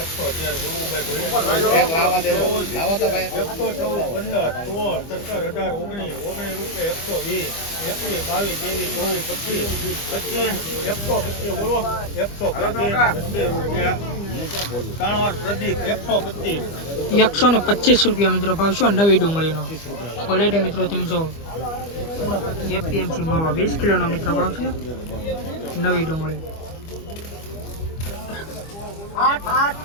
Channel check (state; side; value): late; right; 25 ms